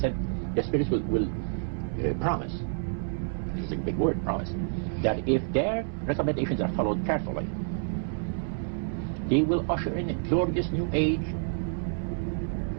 the spirits will promise which is a big word, promise, that if their recommendations are followed carefully, they will usher in a glorious new age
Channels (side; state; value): left; silent; digital silence